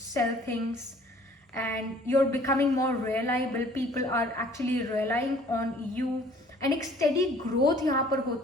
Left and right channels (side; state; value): both; normal; correlation 0.55